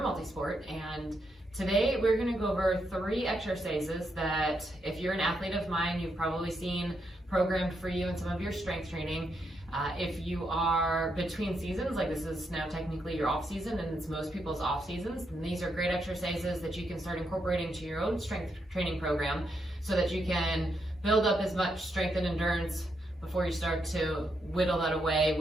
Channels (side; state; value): both; normal; correlation 0.80